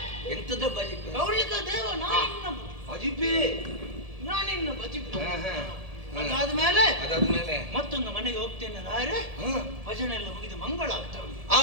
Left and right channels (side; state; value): left; late; 1.7 ms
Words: ಎಂತದ ಬಜಿಪೆ? ಕೌಂಡ್ಲಿಕ ದೇವ ನಾನಿನ್ನ ಬಜಿಪೆ, ನಾನಿನ್ನ ಬಜಿಪೆ. ಅದಾದ್ಮೇಲೆ ಮತ್ತೊಂದು ಮನೆಗೆ ಹೋಗ್ತೇನೆ ರಾಯರೇ. ಭಜನೆ ಎಲ್ಲ ಮುಗಿದು ಮಂಗಳ ಆಗ್ತಾ ಉಂಟು.